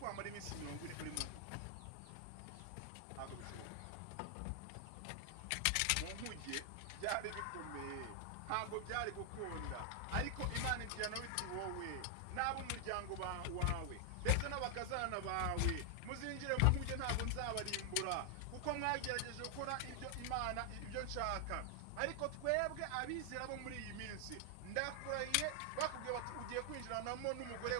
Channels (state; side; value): different; both; correlation 0.00